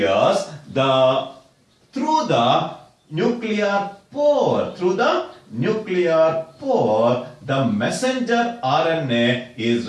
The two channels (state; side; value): identical; both; correlation 1.00